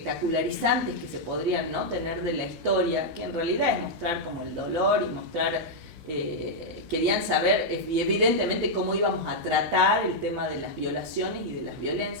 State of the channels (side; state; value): left; late; 4.0 ms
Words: que se podrían, ¿no?, tener de la historia, que en realidad es mostrar como el dolor y mostrar, querían saber evidentemente cómo íbamos a tratar el tema de las violaciones y de las